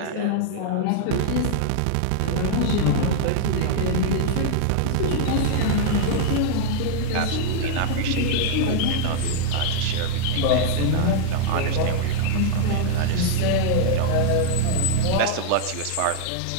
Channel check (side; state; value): both; different; correlation -0.01